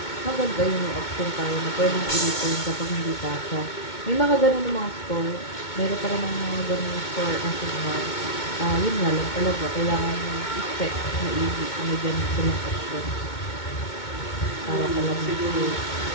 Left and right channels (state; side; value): late; right; 2.2 ms